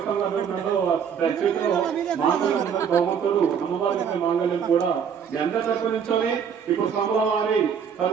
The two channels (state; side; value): quieter; left; 7.4 dB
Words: భగవంతుడు అమ్మవారి మాంగళ్యం కూడా మీ అందరి తరపు నుంచొని ఇప్పుడు స్వాముల వారి